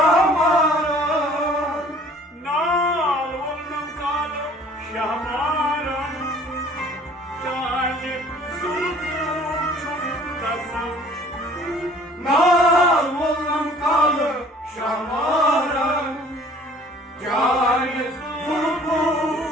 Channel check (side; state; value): both; normal; correlation 0.53